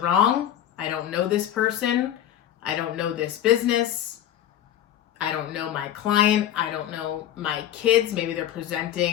I don't know this person. I don't know this business. I don't know my client. I don't know my kids. Maybe they're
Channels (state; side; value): quieter; right; 11.3 dB